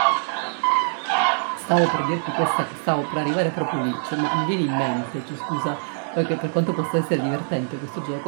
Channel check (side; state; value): left; silent; 62 dB below the other